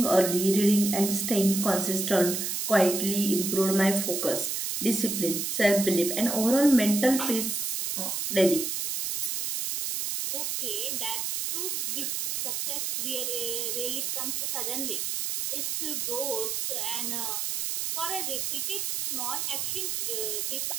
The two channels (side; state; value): right; noise; hiss, 1 dB below the sound